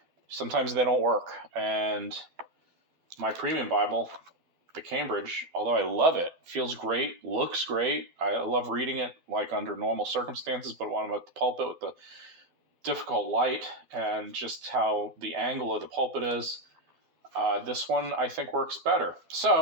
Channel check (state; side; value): late; left; 12 ms